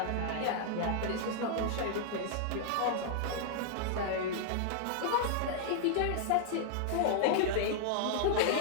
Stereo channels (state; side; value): different; both; correlation -0.01